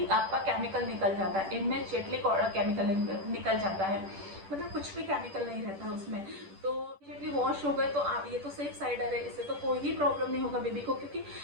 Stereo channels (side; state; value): left; late; 10 ms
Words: आपका केमिकल निकल जाता है, इमीडिएटली केमिकल निकल जाता है, मतलब कुछ भी केमिकल नहीं रहता उसमें। तो इमीडिएटली वॉश हो गए तो आप, ये तो सेफ साइडर है, इससे तो कोई ही प्रॉब्लम नहीं होगा बेबी को, क्योंकि